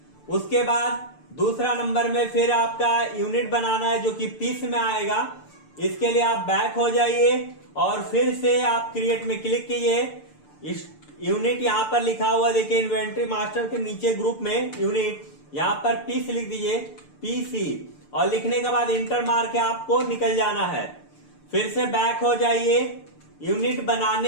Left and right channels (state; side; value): late; right; 6.8 ms